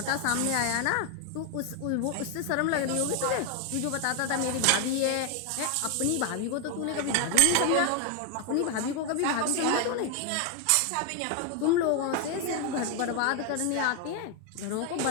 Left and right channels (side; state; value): both; different; correlation 0.01